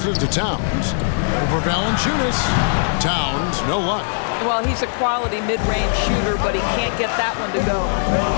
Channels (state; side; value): silent; right; digital silence